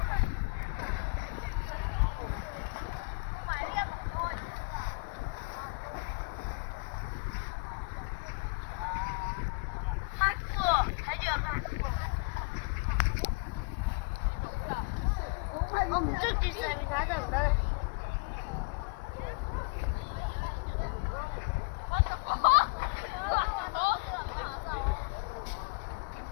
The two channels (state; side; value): quieter; right; 32.4 dB